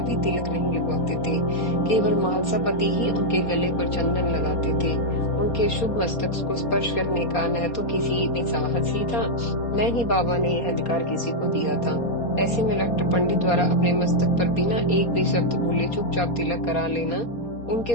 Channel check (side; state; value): right; late; 4.2 ms